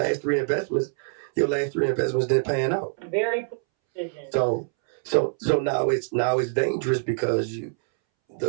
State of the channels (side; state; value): left; silent; 62 dB below the other